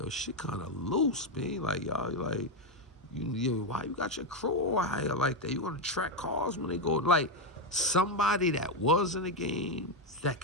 shit kind of loose, man. Like, y'all, like, why you got your crew out here like that? You want to track cars when they go, like, somebody that was in the game that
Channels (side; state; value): both; normal; correlation 0.07